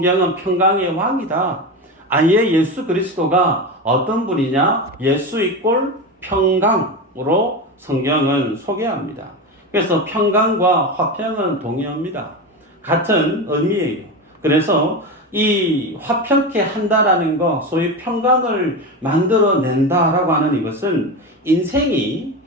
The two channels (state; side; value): normal; both; correlation 0.21